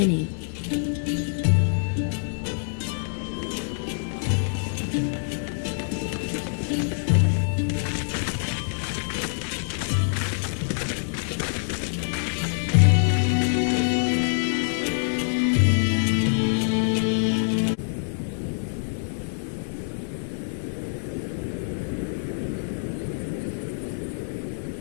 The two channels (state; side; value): silent; right; digital silence